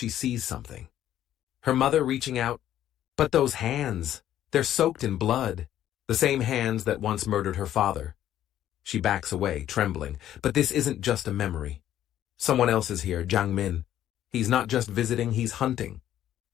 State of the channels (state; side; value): quieter; right; 11.8 dB